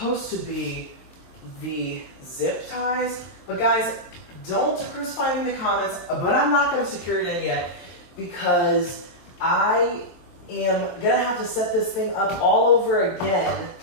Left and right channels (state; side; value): late; right; 23 ms